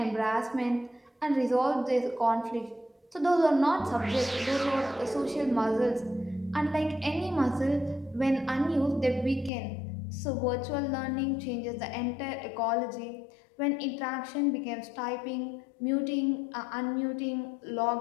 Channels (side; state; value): right; drops out; at 9.5 s